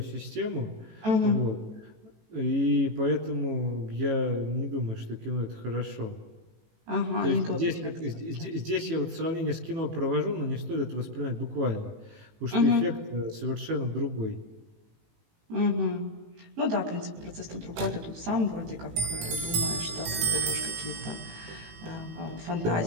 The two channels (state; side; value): late; left; 18 ms